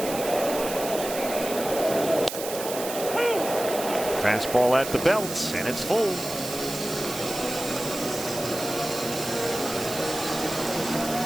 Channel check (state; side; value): noise; right; hiss, 8 dB below the sound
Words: Fastball at the belt, and it's full.